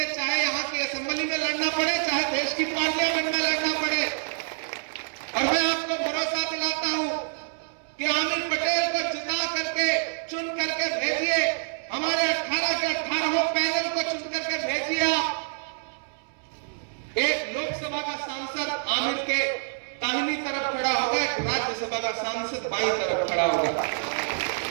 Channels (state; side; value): silent; left; 60 dB below the other